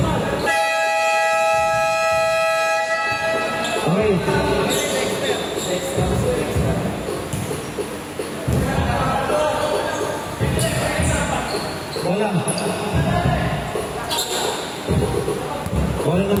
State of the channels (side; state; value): both; identical; correlation 1.00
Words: Okay. Wala. Wala nang